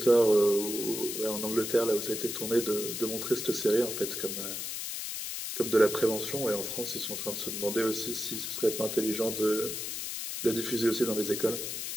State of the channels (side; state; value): left; noise; hiss, 5 dB below the sound